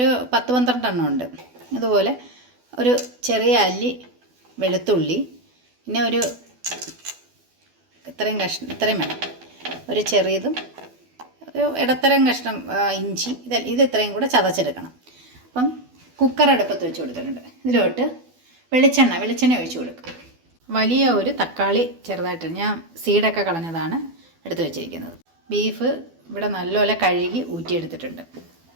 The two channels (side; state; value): left; late; 12 ms